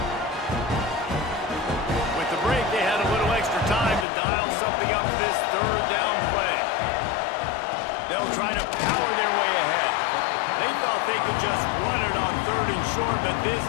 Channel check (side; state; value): right; drops out; at 4.0 s